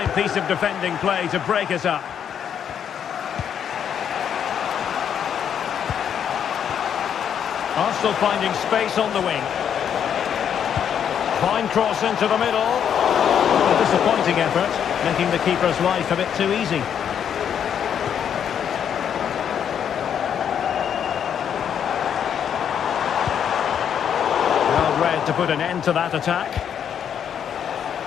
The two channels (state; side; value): quieter; right; 8.6 dB